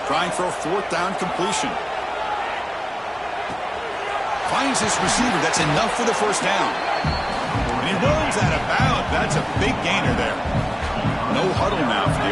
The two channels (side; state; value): both; identical; correlation 1.00